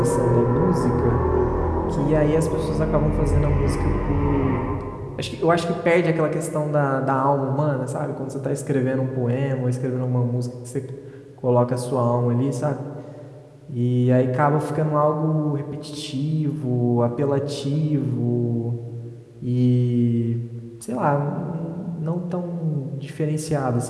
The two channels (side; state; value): both; identical; correlation 1.00